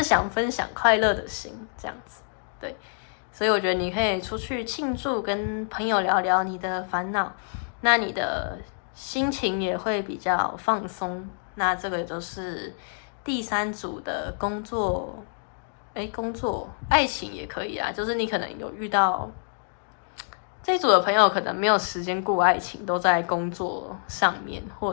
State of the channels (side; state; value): right; silent; digital silence